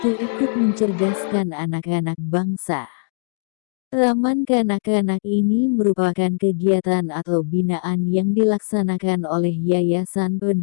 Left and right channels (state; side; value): silent; right; digital silence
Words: ikut mencerdaskan anak-anak bangsa. Taman kanak-kanak ini merupakan kegiatan atau binaan yang dilaksanakan oleh Yayasan